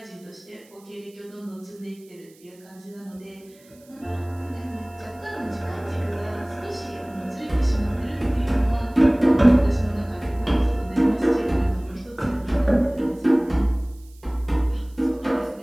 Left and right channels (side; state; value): right; noise; hiss, 28 dB below the sound